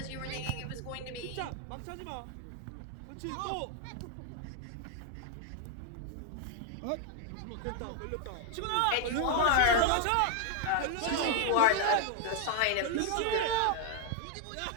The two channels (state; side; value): different; both; correlation 0.00